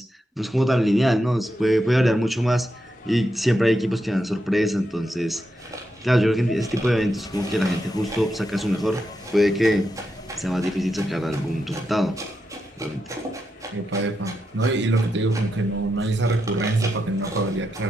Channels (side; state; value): both; normal; correlation 0.85